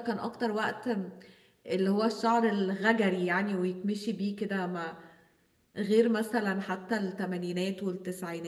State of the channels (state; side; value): identical; both; correlation 1.00